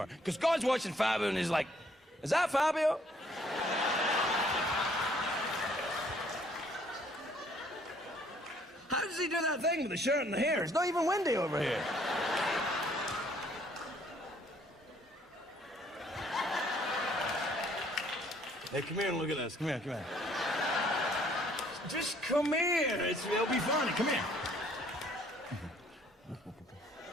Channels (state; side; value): normal; both; correlation 0.63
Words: Because God's watching Fabio and he's like, is that Fabio? How does he do that thing with the shirt and the hair? It's not even windy over here. Hey, come here and look at this. Come here, come here. Just come here. It'll be fun. Come here.